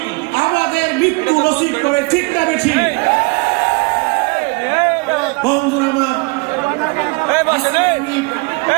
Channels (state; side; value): quieter; left; 28.6 dB